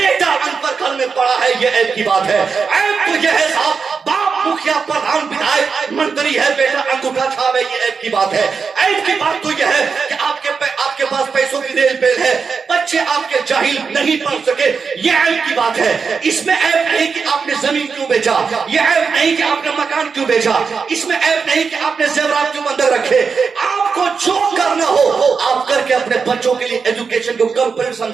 अनपढ़ घर में पड़ा है, ये ऐप की बात है। ऐप तो ये है साहब, बाप मुखिया, प्रधान, विधायक, मंत्री है, बेटा अंगूठा छाप है, ये ऐप की बात है। ऐप की बात तो यह है कि आपके पास पैसों की रेल पेल है, बच्चे आपके जाहिल नहीं पढ़ सके, ये ऐप की बात है। इसमें ऐप नहीं कि आपने जमीन क्यों बेचा, ये ऐप नहीं कि आपने मकान क्यों बेचा, इसमें ऐप नहीं कि आपने जेवरात क्यों बंधक रखे। आपको जो करना हो आप करके अपने बच्चों के लिए एजुकेशन को कंप्लीट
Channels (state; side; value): quieter; left; 5.4 dB